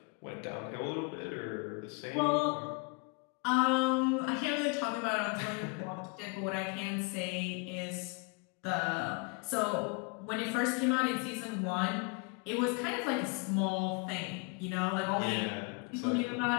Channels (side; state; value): right; quieter; 32.4 dB